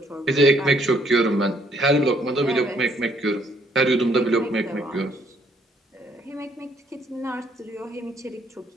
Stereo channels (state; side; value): normal; both; correlation 0.67